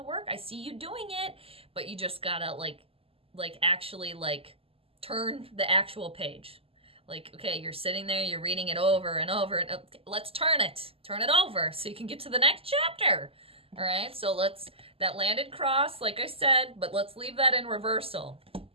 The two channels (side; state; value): left; late; 0.28 ms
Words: work. I see you doing it, but you just gotta like actually like turn the actual page. Like, okay, you're sitting there, you're reading it over and over, and let's turn it over so you can get to the next chapter. All right, so that landed cross, like I said, but let's leave that in reversal